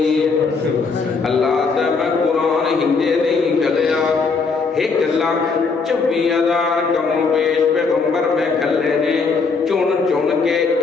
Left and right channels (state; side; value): quieter; right; 4.7 dB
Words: اللہ تے میں قرآن ہندے نہیں گلیا 1,24,000 کم پیش پیغمبر میں گھلے نے چون چون کے